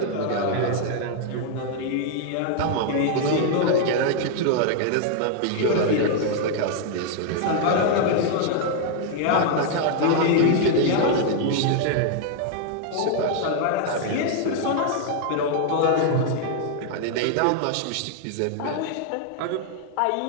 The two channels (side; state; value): both; different; correlation 0.00